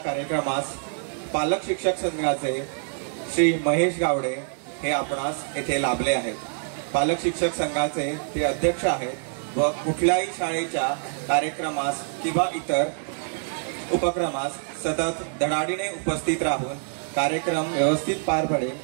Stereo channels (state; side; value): silent; left; digital silence